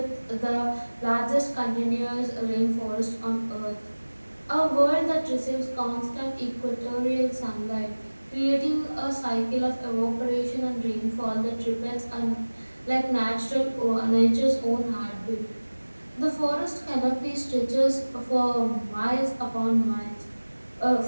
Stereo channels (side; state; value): both; inverted; correlation -1.00